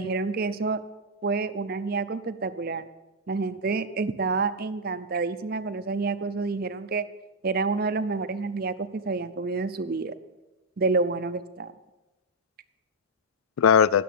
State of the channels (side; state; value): both; normal; correlation -0.06